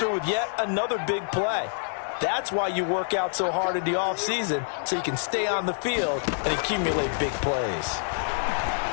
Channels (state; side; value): silent; right; 58 dB below the other